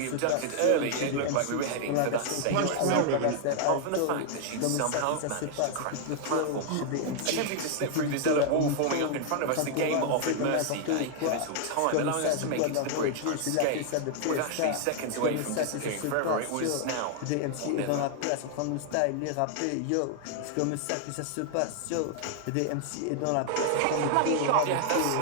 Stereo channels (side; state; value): both; different; correlation 0.00